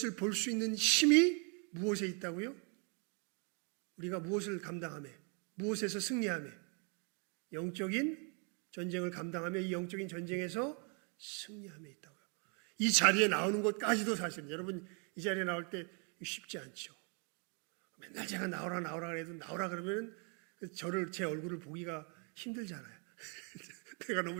볼 수 있는 힘이 무엇에 있다고요? 우리가 무엇을 감당하며 무엇에서 승리하며 영적인 전쟁을 감당하며 이 영적인 전쟁에서 승리하며 있다고요. 이 자리에 나오는 것까지도 사실은 여러분 이 자리에 나올 때 쉽지 않죠. 맨날 제가 나오라 그래도 나오라 그러면 제 얼굴을 보기가 힘들잖아요. 내가 너무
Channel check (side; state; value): left; quieter; 37.5 dB